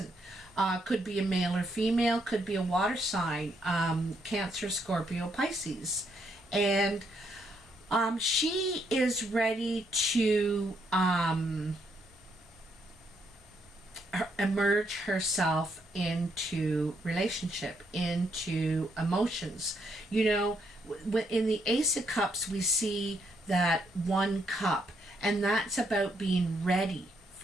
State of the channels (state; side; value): normal; both; correlation 0.75